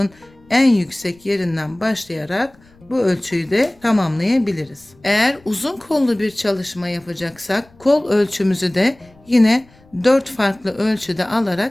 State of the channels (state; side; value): noise; left; rumble, 29 dB below the sound